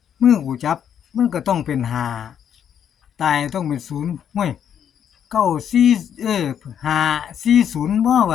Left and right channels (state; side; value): quieter; right; 8.9 dB